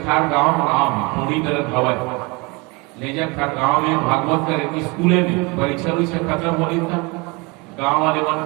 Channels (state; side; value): quieter; left; 27.5 dB